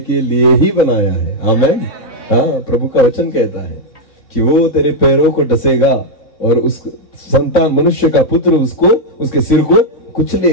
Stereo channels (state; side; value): late; right; 3.6 ms